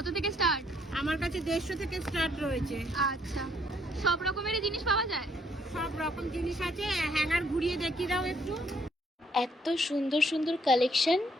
থেকে স্টার্ট? আমার কাছে ১৫০ থেকে স্টার্ট রয়েছে। আচ্ছা, সব রকমেরই জিনিস পাওয়া যায়? সব রকম জিনিস আছে। হ্যাঙ্গার ঘুরিয়ে দেখিয়ে দাও একটু। এত সুন্দর সুন্দর কালেকশন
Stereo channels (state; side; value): normal; both; correlation 0.68